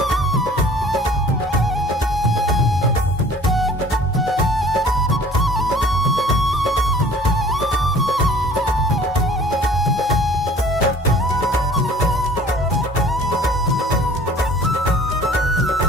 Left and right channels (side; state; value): both; normal; correlation 0.50